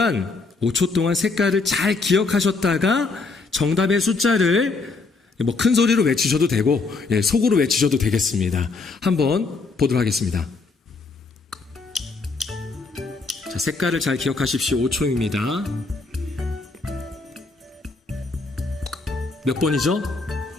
동안 색깔을 잘 기억하셨다가 정답의 숫자를 큰 소리로 외치셔도 되고, 속으로 외치셔도 되겠습니다. 한번 보도록 하겠습니다. 자, 색깔을 잘 기억하십시오. 5초입니다. 몇 번이죠?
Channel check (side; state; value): right; quieter; 4.0 dB